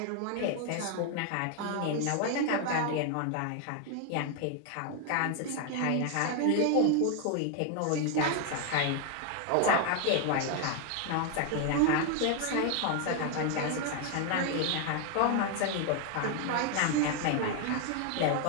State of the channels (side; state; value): both; different; correlation 0.01